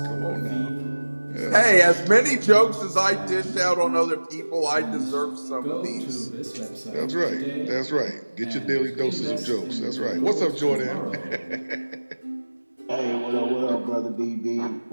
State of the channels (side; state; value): both; inverted; correlation -1.00